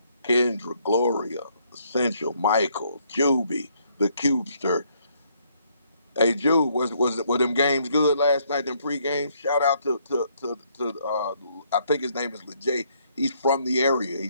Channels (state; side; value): inverted; both; correlation -0.69